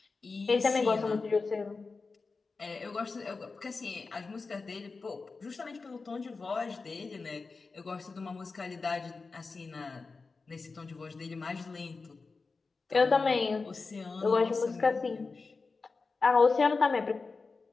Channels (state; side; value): quieter; right; 4.2 dB